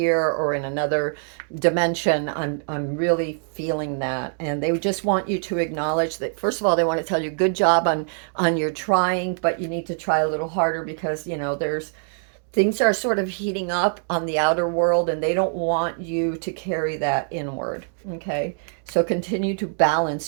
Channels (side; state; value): left; silent; 63 dB below the other